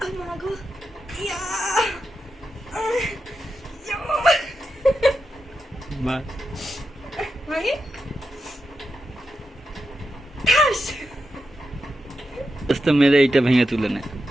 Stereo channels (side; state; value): both; normal; correlation 0.87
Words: মাগো, ইয়া, ভাঙি, ঠাস। আস্তে মেরে এইটা ভেঙে তুলে নে।